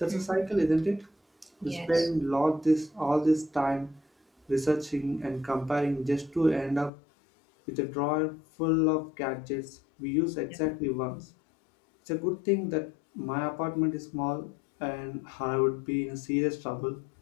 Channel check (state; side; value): drops out; right; at 6.9 s